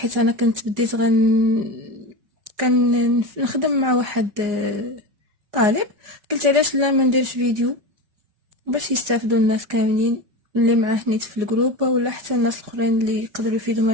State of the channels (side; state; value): left; late; 4.9 ms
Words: انا كنت بديت كان نخدم مع واحد طالب. قلت علاش لا ما نديرش فيديو باش يستافدوا الناس كاملين اللي معاه نيت في الجروب، ولا حتى الناس الاخرين اللي يقدروا يفيدوا من